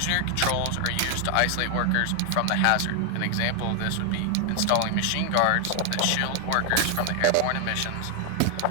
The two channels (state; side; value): different; both; correlation 0.00